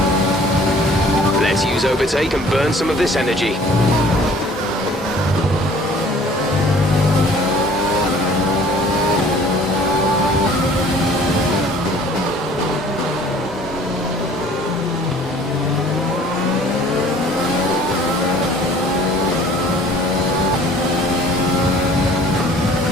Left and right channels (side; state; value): both; normal; correlation 0.52